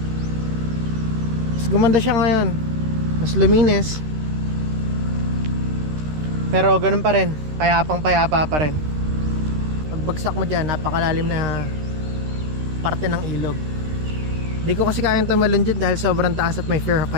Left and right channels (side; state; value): left; late; 13 ms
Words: Mas gumanda siya ngayon. Mas luminis. Pero ganun pa rin, payapang payapa pa rin. Pagbagsak mo dyan, napakalalim na parte ng ilog. Hindi ko kasi kayang tumalon dyan dahil sobrang taas at may fear of